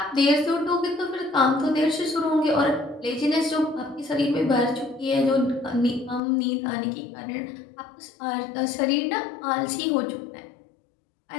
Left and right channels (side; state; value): right; drops out; at 6.2 s